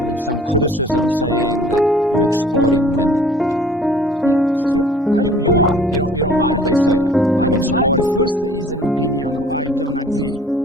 I mean, some criticism saying that you're exploiting women. Yeah, it's true. You are. You don't mind if they say that? I don't mind. The first is an opinion. I don't agree.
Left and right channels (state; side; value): normal; both; correlation 0.52